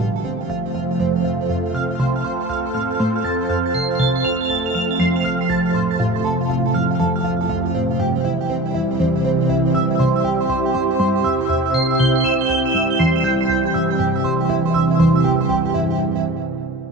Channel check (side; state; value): both; normal; correlation 0.39